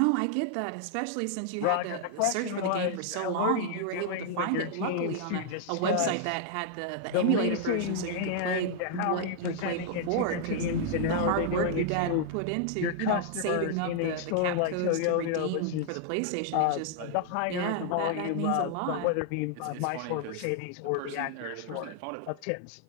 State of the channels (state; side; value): different; both; correlation -0.01